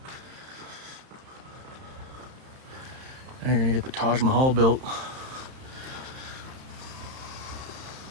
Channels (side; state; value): left; late; 31 ms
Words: Now you're gonna get the Taj Mahal built.